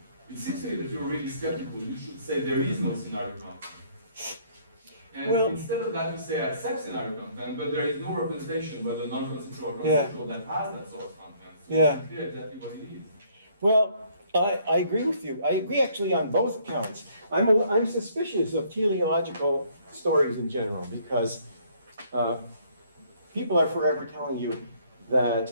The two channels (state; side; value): inverted; both; correlation -0.62